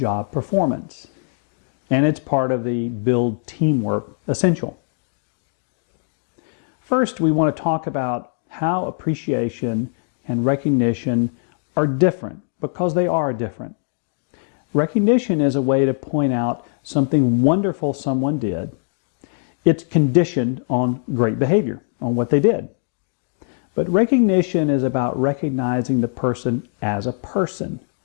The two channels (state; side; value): silent; right; 65 dB below the other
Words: performance, and it's part of the Build Teamwork essential. First, we want to talk about how appreciation and recognition are different, because they are different. Recognition is a way to point out something wonderful someone did. It's conditioned on great behavior, on what they did. But recognition is about recognizing the person as a person